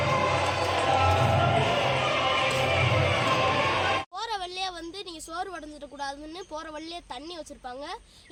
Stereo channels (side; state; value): both; identical; correlation 1.00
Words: சோறு வடைஞ்சிடக்கூடாதுன்னு போகிற வழியே தண்ணி வச்சுருப்பாங்க.